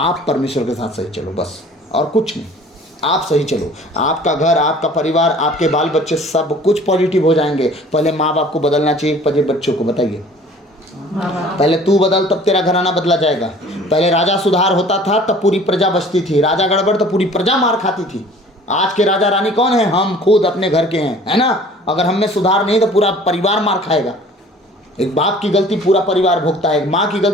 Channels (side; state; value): both; normal; correlation 0.49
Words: परमेश्वर के साथ सही चलो, बस और कुछ नहीं। आप सही चलो, आपका घर, आपका परिवार, आपके बाल बच्चे सब कुछ पॉजिटिव हो जाएंगे। पहले माँ बाप को बदलना चाहिए, पहले बच्चों को बताइए। पहले तू बदल तब तेरा घराना बदला जाएगा। पहले राजा सुधार होता था तब पूरी प्रजा बचती थी, राजा गड़बड़ तो पूरी प्रजा मार खाती थी। आज के राजा रानी कौन है? हम खुद अपने घर के हैं, है ना। अगर हम में सुधार नहीं तो पूरा परिवार मार खाएगा। एक बाप की गलती पूरा परिवार भुगता है, एक माँ की